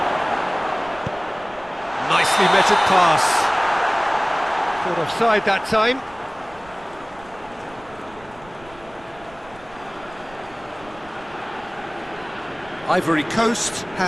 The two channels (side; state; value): right; noise; rumble, 23 dB below the sound